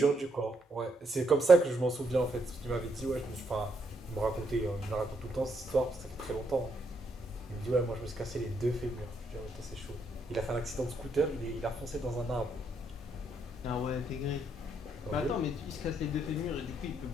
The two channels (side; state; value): both; normal; correlation 0.76